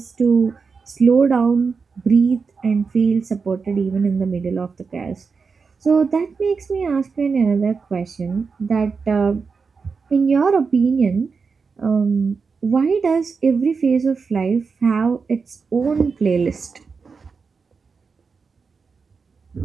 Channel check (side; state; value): left; quieter; 5.1 dB